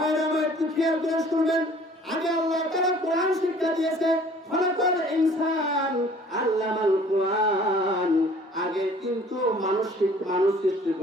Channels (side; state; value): both; normal; correlation 0.53